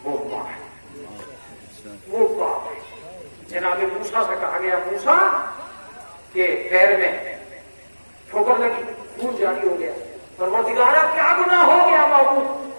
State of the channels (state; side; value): inverted; both; correlation -1.00